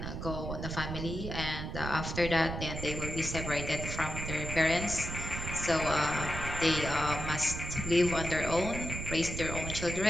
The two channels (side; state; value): right; noise; rumble, 5 dB below the sound